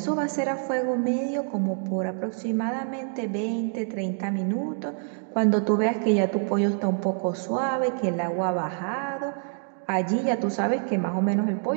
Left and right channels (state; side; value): silent; left; 61 dB below the other